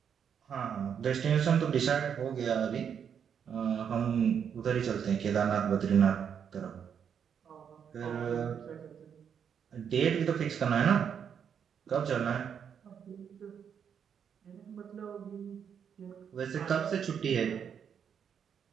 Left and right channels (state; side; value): quieter; left; 7.7 dB